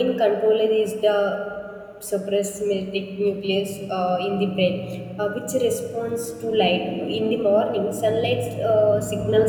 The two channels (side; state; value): both; identical; correlation 1.00